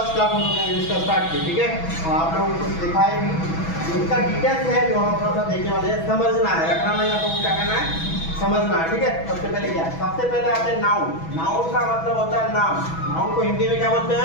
class हम लोग ने इंग्लिश का स्टार्ट किया, ठीक है। और आप लोगों को कुछ दिखाई भी इसका डिटेल्स है जो हम थोड़ा सा देखने वाले हैं। समझना है, रखना नहीं, आप लोगों को क्या करना है, समझना है, ठीक है। सबसे पहले क्या है, सबसे पहले आते हैं नाउन। नाउन का मतलब होता है नाम। नाउन को हिंदी में क्या बोलते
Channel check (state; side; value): late; right; 6.1 ms